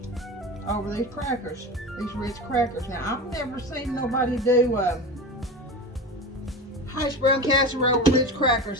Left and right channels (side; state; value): both; normal; correlation 0.28